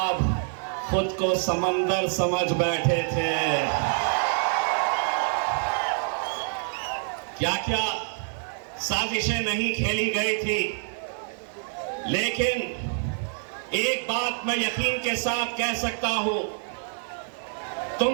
खुद को समंदर समझ बैठे थे। क्या क्या साजिशें नहीं खेली गई थी, लेकिन एक बात मैं यकीन के साथ कह सकता हूं,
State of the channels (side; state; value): left; silent; 60 dB below the other